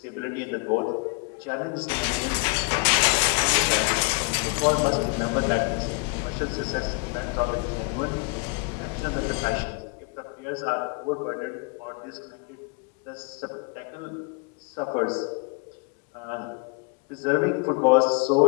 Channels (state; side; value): quieter; right; 32.1 dB